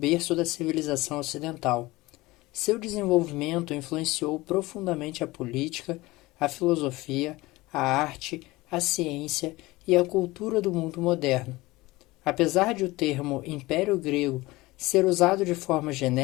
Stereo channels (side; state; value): right; quieter; 20.3 dB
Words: da civilização ocidental. Seu desenvolvimento influenciou profundamente a política, a filosofia, a arte, a ciência e a cultura do mundo moderno. Apesar de o termo Império Grego ser usado de forma